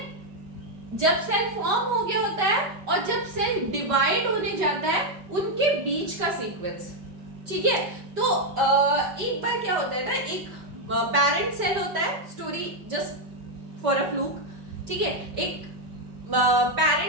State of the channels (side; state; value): left; late; 5.3 ms